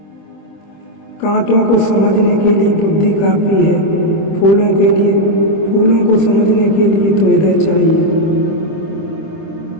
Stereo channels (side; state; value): right; late; 25 ms